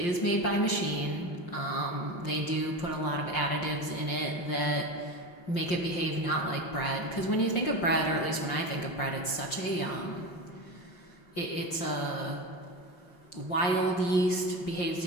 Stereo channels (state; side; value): late; right; 5.7 ms